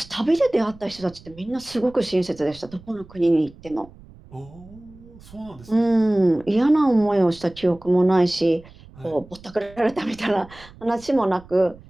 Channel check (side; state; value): right; noise; rumble, 22 dB below the sound